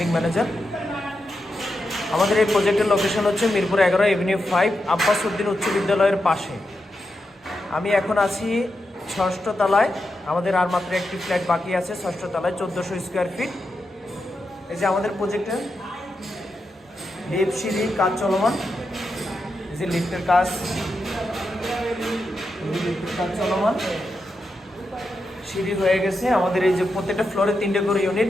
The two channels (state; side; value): normal; both; correlation 0.87